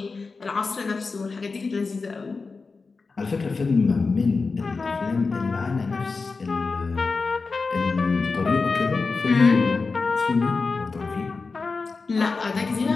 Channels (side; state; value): right; quieter; 4.3 dB